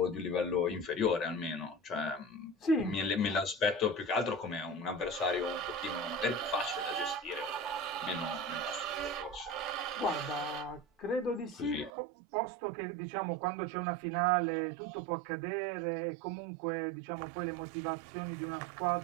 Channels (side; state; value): left; drops out; at 11.9 s